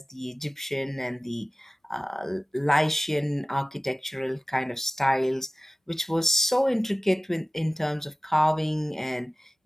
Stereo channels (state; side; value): normal; both; correlation 0.97